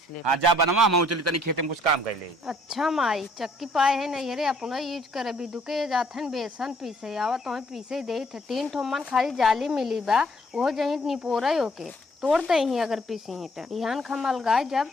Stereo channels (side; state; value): both; normal; correlation 0.64